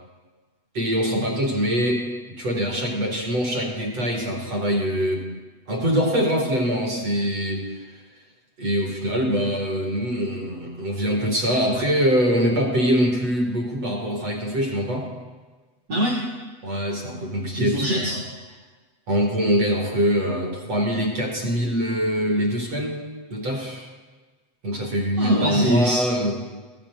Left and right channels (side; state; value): left; late; 8.0 ms